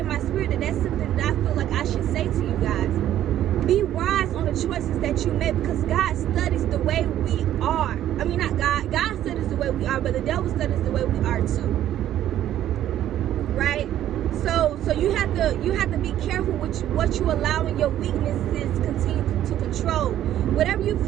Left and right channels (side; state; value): left; quieter; 12.0 dB